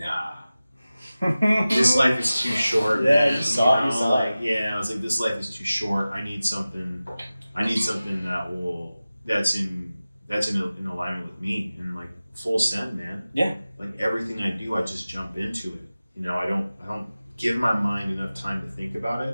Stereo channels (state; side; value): inverted; both; correlation -0.96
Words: this life is too short. Yeah, you saw it. I was like, this life is too short. I need something that's in alignment with me, and like full send, man. Yeah. Like, everything I do, I just jump into it. You know, I don't give my mind enough time to think about